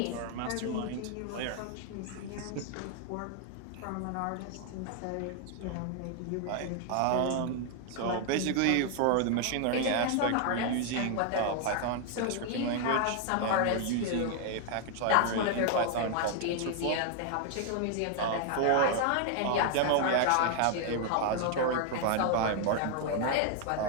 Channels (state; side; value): different; both; correlation 0.00